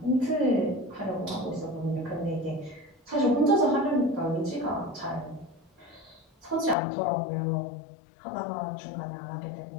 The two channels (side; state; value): right; drops out; at 6.8 s